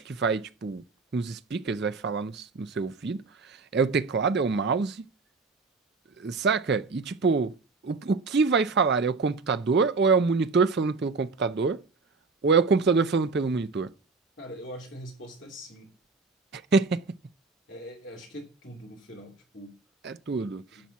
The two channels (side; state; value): left; quieter; 4.2 dB